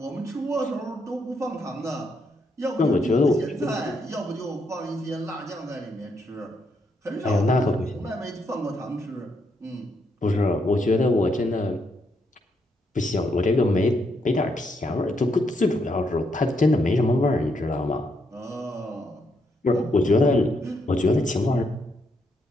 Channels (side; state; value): both; normal; correlation 0.77